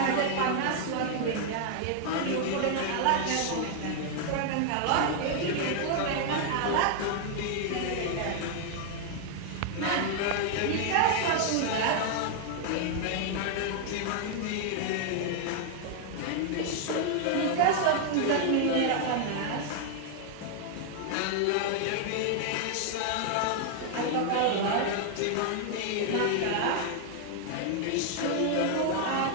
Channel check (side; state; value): both; different; correlation 0.00